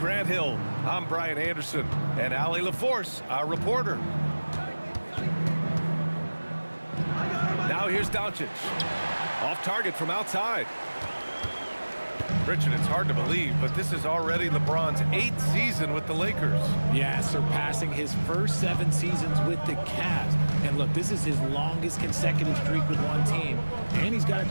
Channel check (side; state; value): both; inverted; correlation -1.00